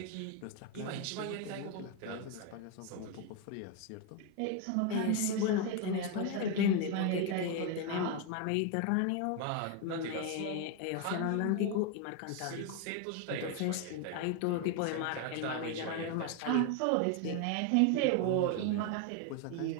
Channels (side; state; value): both; different; correlation 0.01